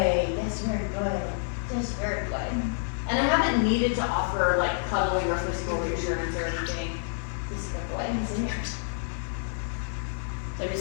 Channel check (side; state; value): right; silent; 58 dB below the other